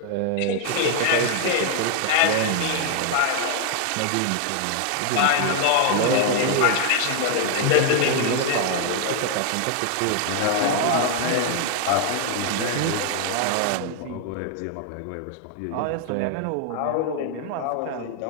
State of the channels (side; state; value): both; different; correlation 0.00